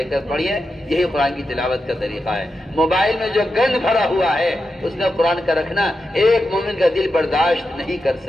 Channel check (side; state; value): both; normal; correlation 0.88